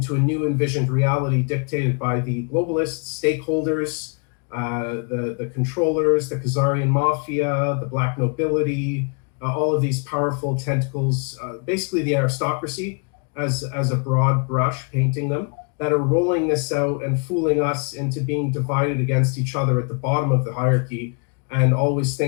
a new envisioned reality dictated by the globalists, stakeholders, the controllers, the Khazarian mafia, the black nobility, all of these powerful tentacles, basically the aristocracy, as a broad brush, painting them, that are rolling this out and fooling us into being divided against each other at the bottom of the hierarchy and always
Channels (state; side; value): quieter; right; 39.2 dB